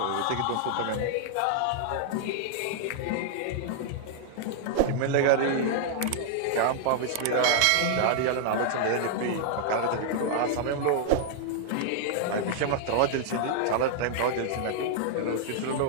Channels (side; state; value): both; different; correlation -0.01